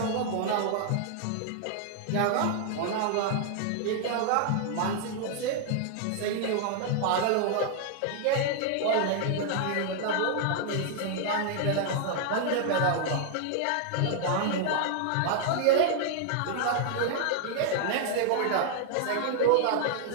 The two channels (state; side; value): different; both; correlation 0.00